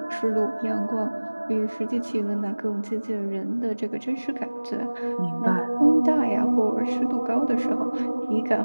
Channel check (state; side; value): inverted; both; correlation -1.00